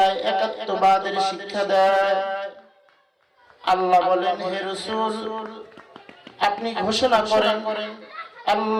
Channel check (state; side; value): identical; both; correlation 1.00